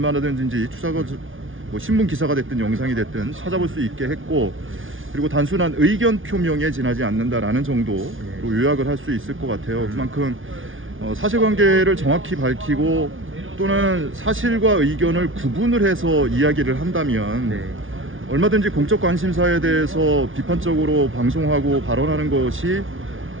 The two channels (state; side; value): late; left; 0.57 ms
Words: 추가가 뭐 신문 기사가 됐든 영상이 됐든 찾아볼 수 있게 했고, 그리고 단순한 의견 표명에 지나지 않는다라는 정도로 요약을 할 수 있을 것 같아요. 그만큼 사실관계를 정확히 밝히고 또는 사실과 의견을 구분을 해서 이야기를 한다면 얼마든지 공적 관심사에 대해서 비판적으로 방송하고 발언하는 것이